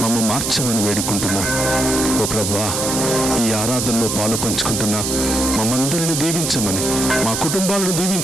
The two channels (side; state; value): right; noise; hiss, 2 dB below the sound